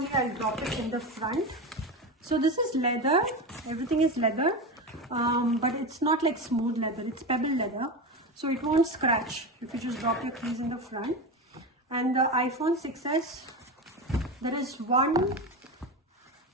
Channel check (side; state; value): both; normal; correlation 0.21